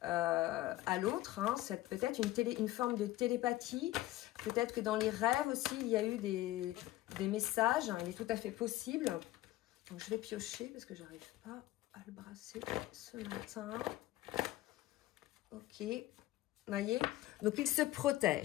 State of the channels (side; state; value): right; quieter; 16.5 dB